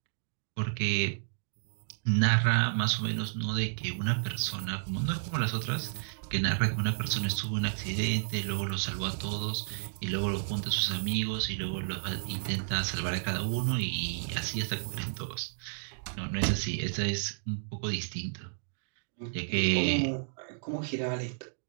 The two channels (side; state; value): left; silent; digital silence